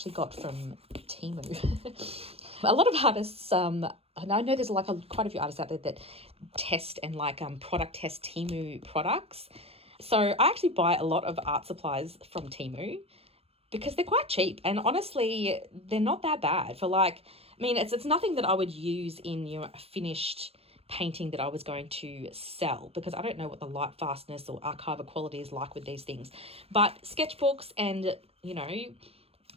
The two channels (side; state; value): left; late; 0.28 ms